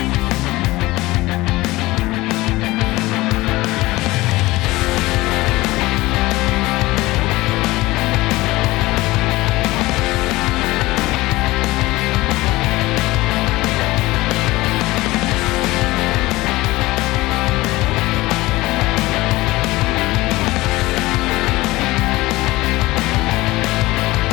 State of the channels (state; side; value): quieter; right; 19.6 dB